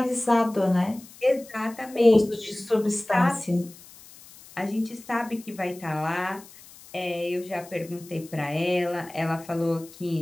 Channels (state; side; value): noise; left; hiss, 21 dB below the sound